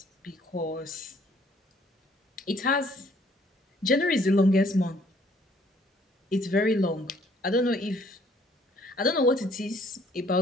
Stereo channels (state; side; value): normal; both; correlation 0.61